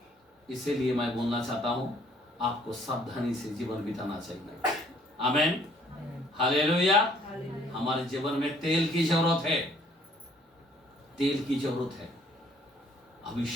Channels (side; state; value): both; normal; correlation 0.61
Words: इसीलिए मैं बोलना चाहता हूं, आपको सावधानी से जीवन बिताना चाहिए। आमीन। हालेलुया। हमारे जीवन में तेल की जरूरत है। तेल की जरूरत है।